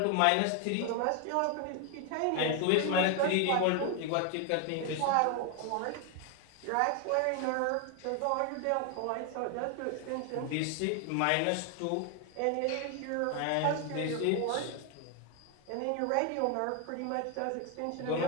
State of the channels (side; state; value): both; different; correlation 0.01